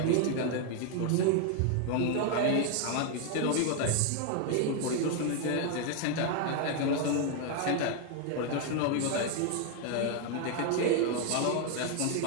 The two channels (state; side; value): different; both; correlation 0.00